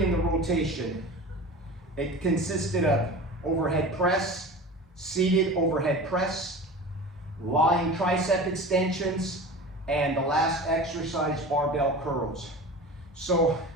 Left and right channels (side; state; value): both; normal; correlation 0.35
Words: in the rotation. It consisted of overhead press, seated overhead press, lying tricep extensions, and the last exercise, barbell curls. So